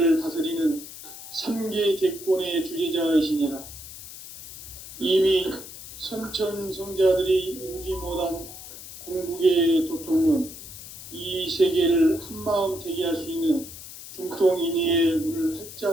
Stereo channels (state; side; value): noise; left; hiss, 14 dB below the sound